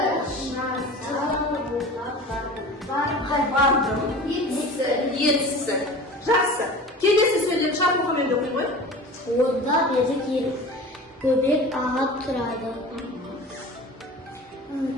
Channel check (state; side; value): normal; both; correlation 0.37